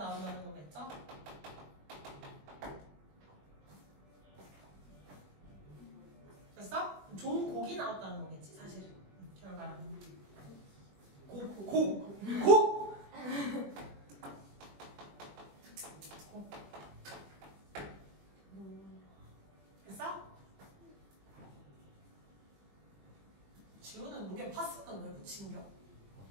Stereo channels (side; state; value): left; late; 20 ms